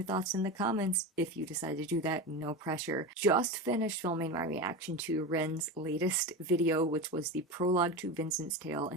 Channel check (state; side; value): normal; both; correlation 0.23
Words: thoughts in the comments if you decide to do that. No pressure. Just finished filming my reaction to Ren's latest video, which was the prologue to Vincent's Tale,